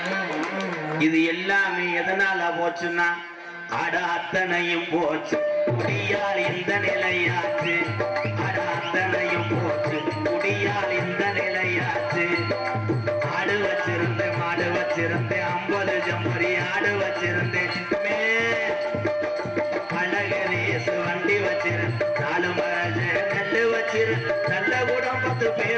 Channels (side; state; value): both; identical; correlation 1.00